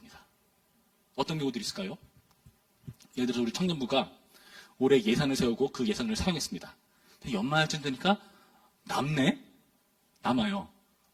어떤 경우들이 있을까요? 예를 들어서 우리 청년부가 올해 예산을 세우고 그 예산을 사용했습니다. 연말쯤 되니까 남아요.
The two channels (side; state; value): both; identical; correlation 1.00